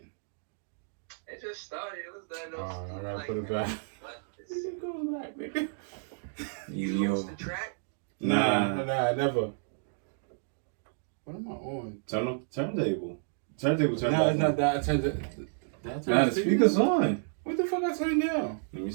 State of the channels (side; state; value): left; silent; digital silence